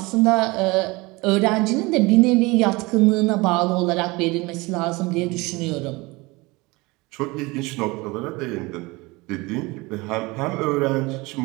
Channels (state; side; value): quieter; left; 23.6 dB